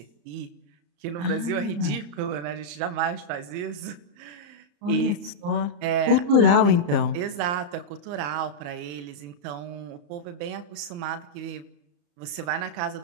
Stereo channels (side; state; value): left; late; 34 ms